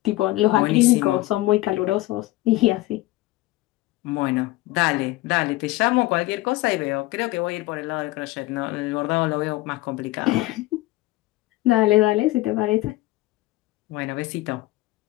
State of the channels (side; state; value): right; quieter; 18.4 dB